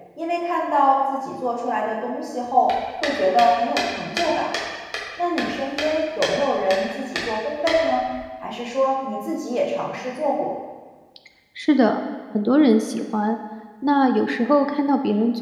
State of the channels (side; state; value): both; identical; correlation 1.00